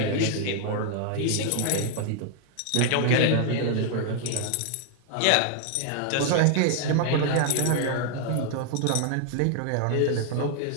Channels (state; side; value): different; both; correlation 0.00